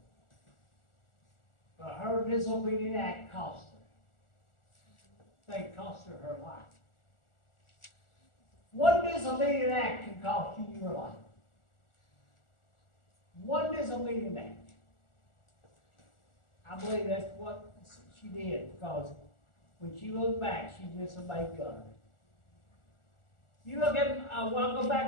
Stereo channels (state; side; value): late; right; 1.4 ms